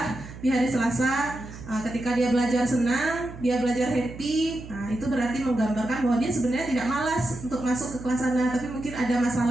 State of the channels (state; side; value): noise; right; hum, 14 dB below the sound